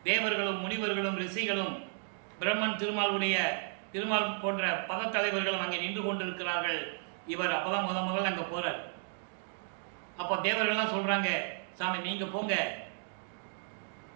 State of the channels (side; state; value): left; silent; 55 dB below the other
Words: தேவர்களும் முனிவர்களும் ரிஷிகளும் பிரம்மன் திருமால் போன்ற பதத்தலைவர்களும் அங்கே நின்று கொண்டிருக்கிறார்கள். இவர் அப்போ தான் முதல்ல அங்கே போகிறார். அப்போ தேவர்கள்லாம் சொல்கிறாங்க, சாமி நீங்கள் போங்க